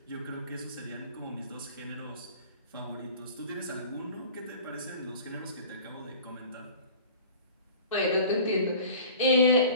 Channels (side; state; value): both; inverted; correlation -0.44